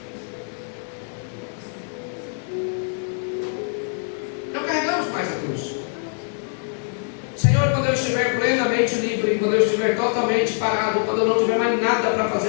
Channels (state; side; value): silent; right; 56 dB below the other